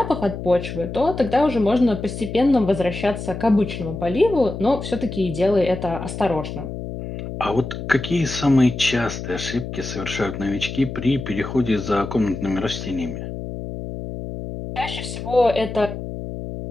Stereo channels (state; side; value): noise; left; hum, 8 dB below the sound